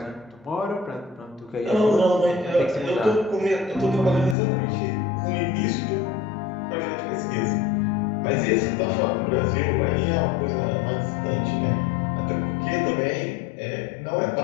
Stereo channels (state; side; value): drops out; right; at 4.4 s